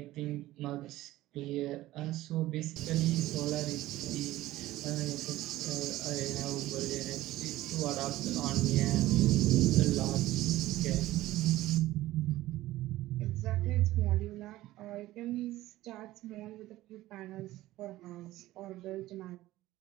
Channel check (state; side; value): quieter; left; 16.3 dB